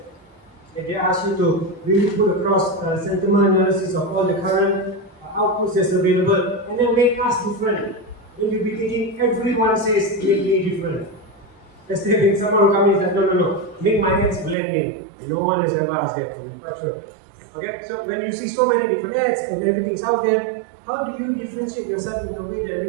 If they ask you to really put across sentiment analysis of all the current outputs that's available and then make us different. Then you'll be thinking everyone says make me different. Let's say someone will come in and say, no, make my ads blend in. No one has ever asked that from me, for sure. Okay, so when you see so many different ads and everything's out there, how do you differentiate yourself in a way that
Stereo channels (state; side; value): drops out; left; at 14.6 s